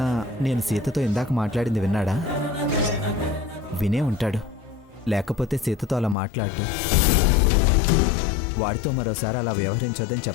నేను సీతతో ఇందాక మాట్లాడింది విన్నాడా? వినే ఉంటాడు, లేకపోతే సీతతో అలా మాట్లాడు. వాడితో మరోసారి అలా వ్యవహరించొద్దని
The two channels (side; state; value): right; drops out; at 6.2 s